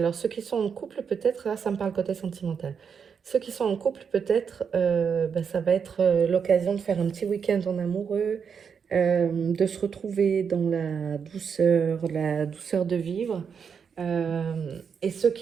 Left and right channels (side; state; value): left; quieter; 6.6 dB